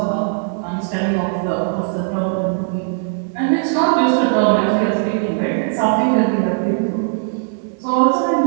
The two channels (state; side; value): silent; left; digital silence